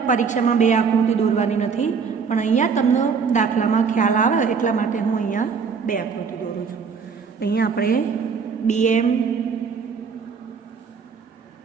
પરીક્ષામાં 2 આકૃતિ દોરવાની નથી, પણ અહીંયા તમને દાખલામાં ખ્યાલ આવે એટલા માટે હું અહીંયા 2 આકૃતિ દોરું છું. અહીંયા આપણે BM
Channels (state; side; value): quieter; left; 5.9 dB